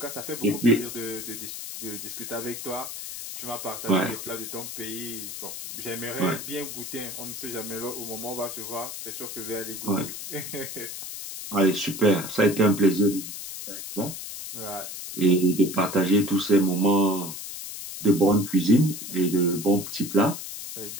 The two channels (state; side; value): noise; left; hiss, 8 dB below the sound